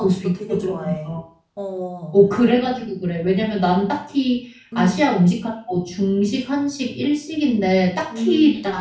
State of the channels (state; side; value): identical; both; correlation 1.00